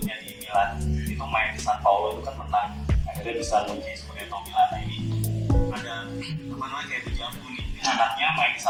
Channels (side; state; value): both; identical; correlation 1.00